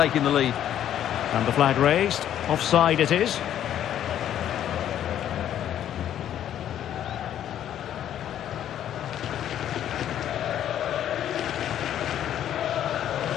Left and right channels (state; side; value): quieter; right; 10.8 dB